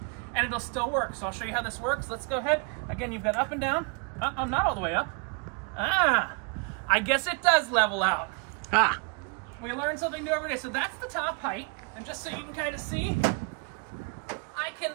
and it'll still work. So I'll show you how this works. Let's go ahead. Again, you've got up and down. I'm not all the way up. I guess it does level out. We learn something new every day. So that's the top height. And just so you can kind of see, I can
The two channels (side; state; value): left; quieter; 33.9 dB